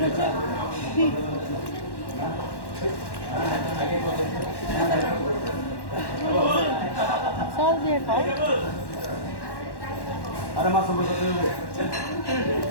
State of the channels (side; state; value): right; late; 1.1 ms